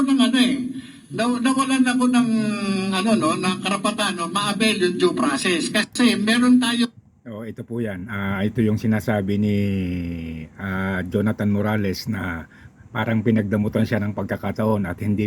ng ano nawalan ako ng ano no, ng karapatan no, ma-avail yung due process kasi meron tayo. Ito po yan. Ito yung sinasabi ni Jonathan Morales na parang pinagdamutan siya ng pagkakataon at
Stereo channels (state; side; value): identical; both; correlation 1.00